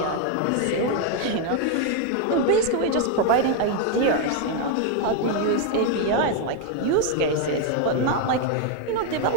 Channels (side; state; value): both; different; correlation 0.01